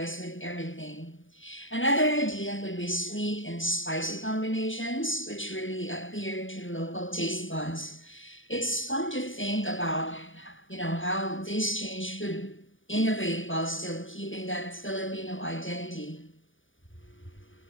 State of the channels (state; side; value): late; right; 0.57 ms